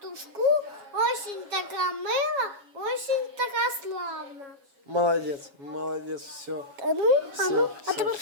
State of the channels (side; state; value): left; late; 7.2 ms